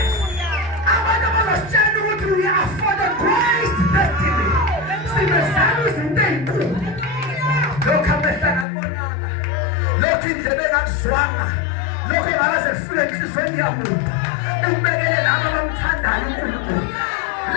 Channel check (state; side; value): drops out; right; at 8.7 s